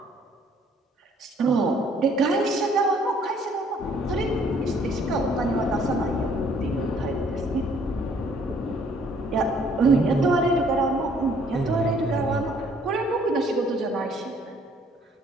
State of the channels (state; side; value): normal; both; correlation 0.61